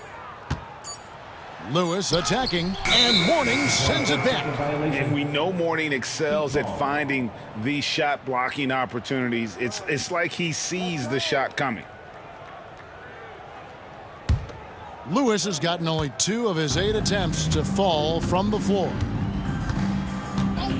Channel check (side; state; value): both; identical; correlation 1.00